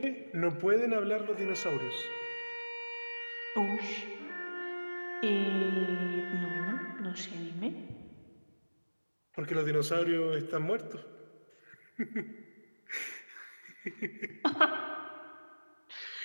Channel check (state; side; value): inverted; both; correlation -1.00